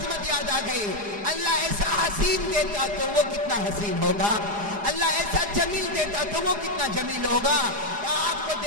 یاد آ گئی. اللہ ایسا حسین دیتا تو وہ کتنا حسین ہوگا, اللہ ایسا جمیل دیتا تو وہ کتنا جمیل ہوگا. آپ کو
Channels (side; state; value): left; late; 4.9 ms